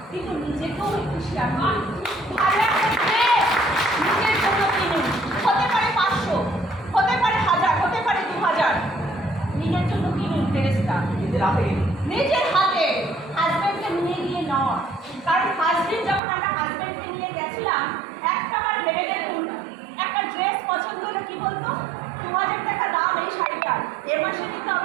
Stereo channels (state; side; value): drops out; left; at 16.2 s